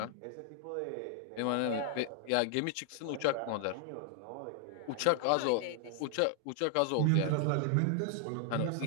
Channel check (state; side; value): different; both; correlation 0.00